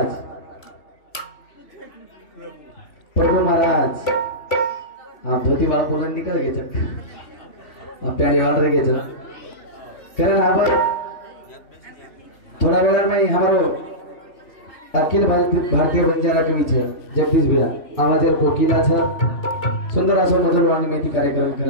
प्रभु महाराज, हाँ धोती बाल पुलन निकल गए जब प्यारे वाल रह गए कारण अब थोड़ा वेला में हमारो अखिल भारतीय बंजारा कवि छे जगदीश भैया आवाजेर कोकिला छे सुंदर असो मधुर वाणी मेथी कार्यक्रम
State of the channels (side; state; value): right; late; 3.3 ms